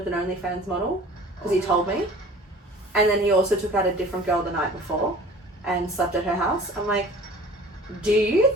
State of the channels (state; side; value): normal; both; correlation 0.45